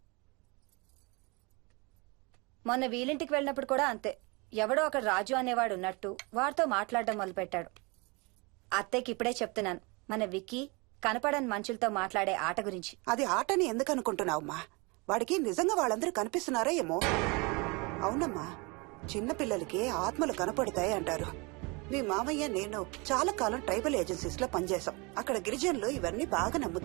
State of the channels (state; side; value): quieter; left; 28.2 dB